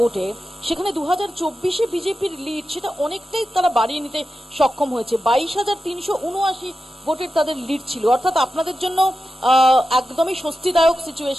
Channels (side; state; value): both; normal; correlation 0.91